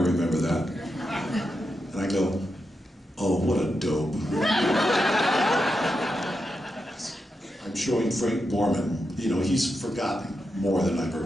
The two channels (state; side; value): normal; both; correlation 0.87